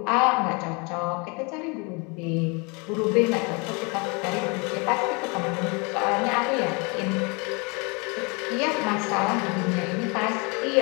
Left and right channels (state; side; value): quieter; right; 30.4 dB